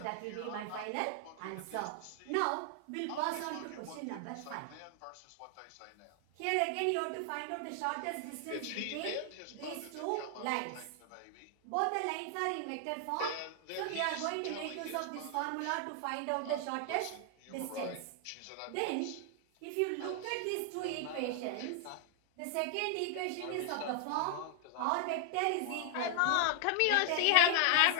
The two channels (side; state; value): both; different; correlation 0.00